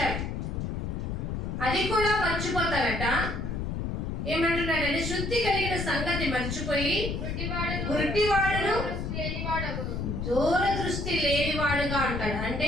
అది కూడా మర్చిపోతారట. ఏమంటున్నాడంటే శుద్ధి కలిగిన సంగతి మర్చిపోయి గుడ్డివాడును దూరదృష్టి లేనివాడుగా ఉంటాడు. అంటే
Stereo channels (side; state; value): left; noise; rumble, 3 dB below the sound